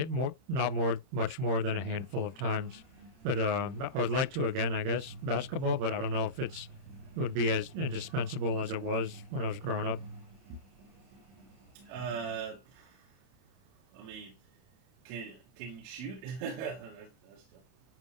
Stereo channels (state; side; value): late; left; 31 ms